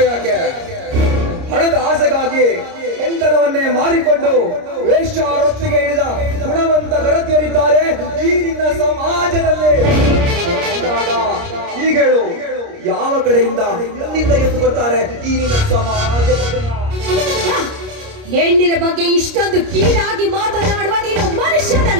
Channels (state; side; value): late; left; 30 ms